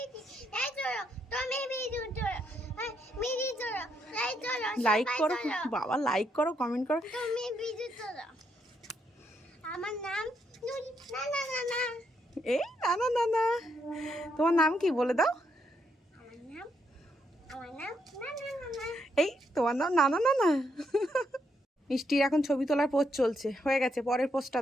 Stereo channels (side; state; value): both; normal; correlation 0.77